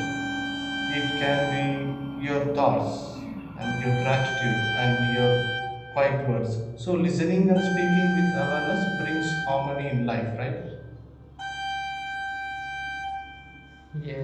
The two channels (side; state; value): both; identical; correlation 1.00